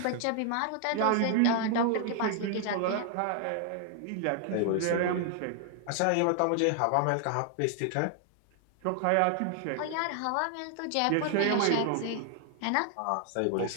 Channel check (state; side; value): different; both; correlation 0.00